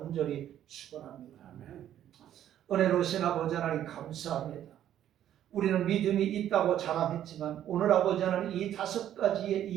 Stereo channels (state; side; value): quieter; left; 11.2 dB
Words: 축원합니다. 은혜로우신 아버지 하나님 감사합니다. 우리는 믿음이 있다고 자랑했지만 오늘 아버지 하나님 이 5가지의